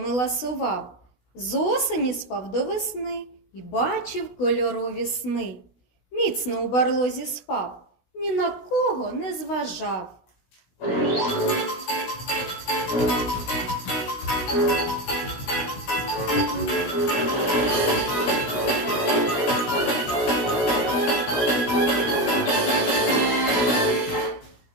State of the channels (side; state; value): right; late; 16 ms